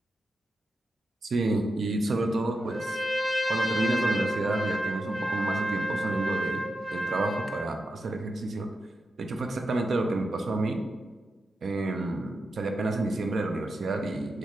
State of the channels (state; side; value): normal; both; correlation 0.88